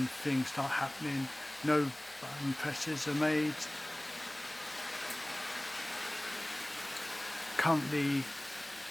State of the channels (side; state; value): left; noise; hum, 28 dB below the sound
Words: things start happening. No button presses are made. Currently